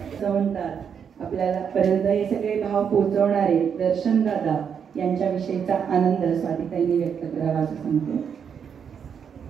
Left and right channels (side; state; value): left; quieter; 7.3 dB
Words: आपल्याला पर्यंत हे सगळे भाव पोहोचवणारे दर्शन दादा यांच्याविषयीचा आनंद स्वातीताईंनी व्यक्त करावा असं सांगतो.